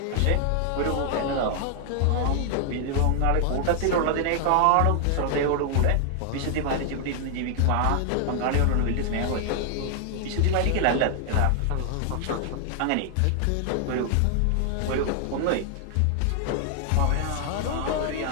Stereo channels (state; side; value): different; both; correlation 0.00